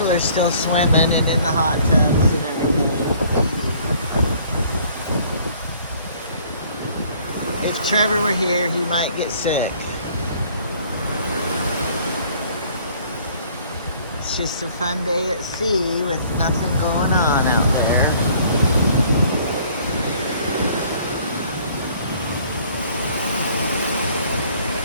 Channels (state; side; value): inverted; both; correlation -0.57